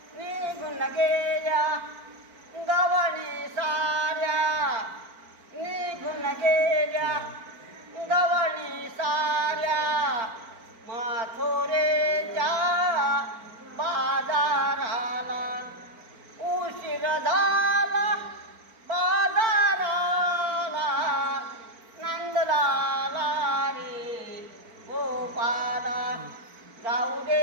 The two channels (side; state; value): left; late; 4.5 ms